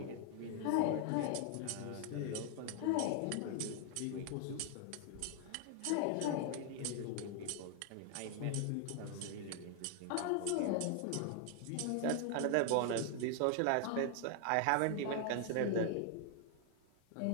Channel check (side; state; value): both; different; correlation 0.00